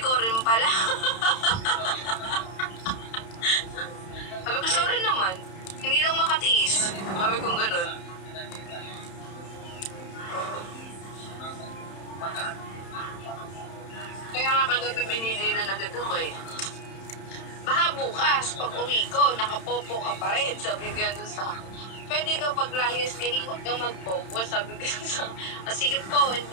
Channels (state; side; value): late; right; 31 ms